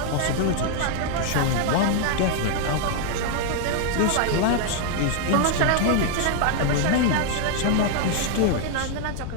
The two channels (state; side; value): different; both; correlation 0.00